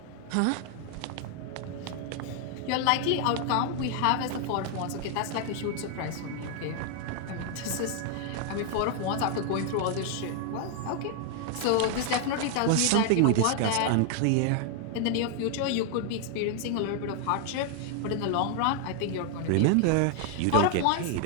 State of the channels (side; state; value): both; different; correlation 0.00